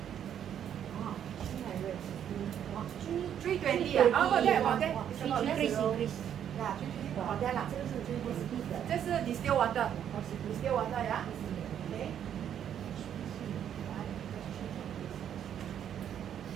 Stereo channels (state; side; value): quieter; left; 9.5 dB